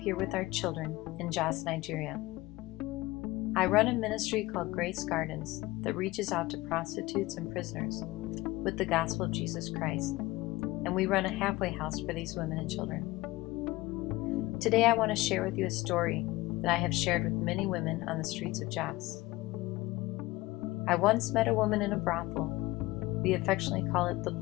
with our children in Jos, Nigeria. I run a ministry called Grace Gardens that reaches out to prostitutes and prisoners with the gospel of Jesus Christ, and we run a halfway house for these women and children. Today I want to share with you a story that I have shared with many women on the streets of Jos. I once met a woman in a brothel. We affectionately call it the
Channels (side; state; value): right; quieter; 19.6 dB